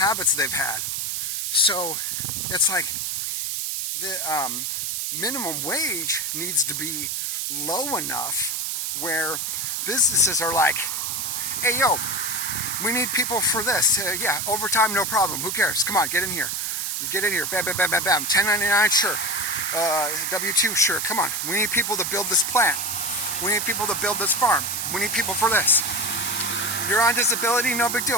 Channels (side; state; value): right; noise; hiss, 1 dB below the sound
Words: they've had. So it's like the minimum wage needs to be low enough where businesses are like, hey, yo, we need people for this. Yeah, overtime, no problem. Who cares? Come on, get in here. You get in here. Bam, bam, bam, bam, bam. 1099, sure. W-2, sure. Come on. We need people to build this plant. We need people to build this farm. We need people for this. You're on disability, no big